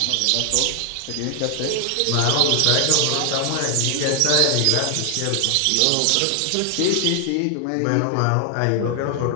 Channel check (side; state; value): both; different; correlation 0.00